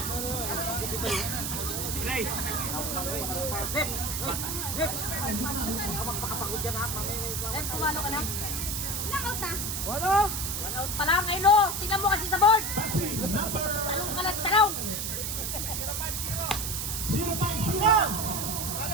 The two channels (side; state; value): right; noise; hiss, 2 dB below the sound